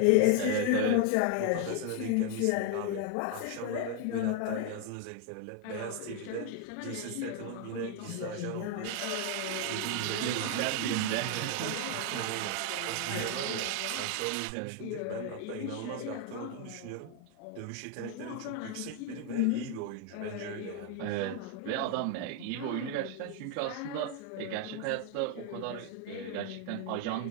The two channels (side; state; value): both; different; correlation 0.01